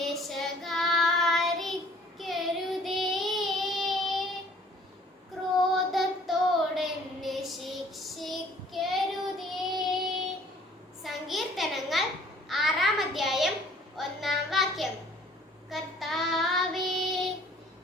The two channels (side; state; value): both; normal; correlation 0.56